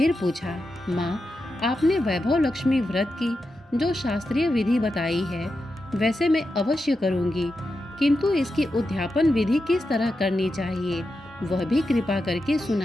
पूछा, माँ, आपने वैभव लक्ष्मी व्रत की जो शास्त्रीय विधि बताई है वैसे मैं अवश्य करूँगी, किंतु इसकी उद्यापन विधि किस तरह करनी चाहिए वह भी कृपा करके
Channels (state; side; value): normal; both; correlation 0.89